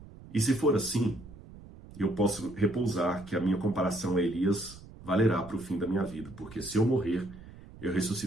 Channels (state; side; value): noise; right; rumble, 18 dB below the sound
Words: E se for assim, eu posso repousar que a minha comparação a Elias valerá para o fim da minha vida, porque se eu morrer, eu